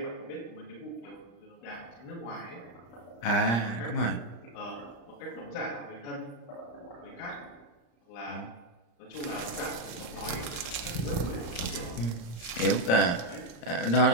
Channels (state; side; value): late; right; 34 ms